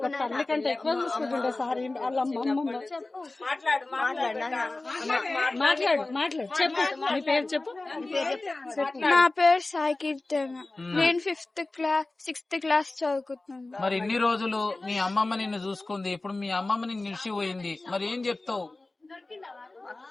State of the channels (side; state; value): right; quieter; 3.1 dB